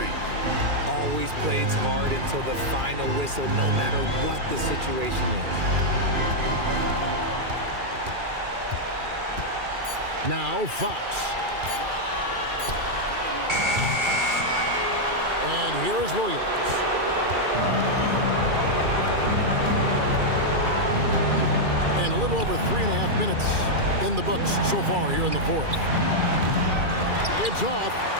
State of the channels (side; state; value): left; late; 2.4 ms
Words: Always plays hard until the final whistle, no matter what the situation is. Now Fox. And here is Williams. And a little over 3.5 minutes in the books so far here in the fourth. It's off.